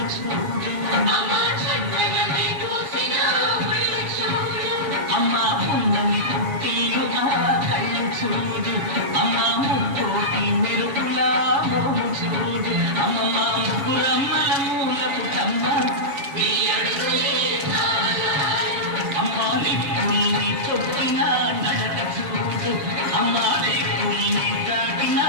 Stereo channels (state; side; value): late; left; 7.4 ms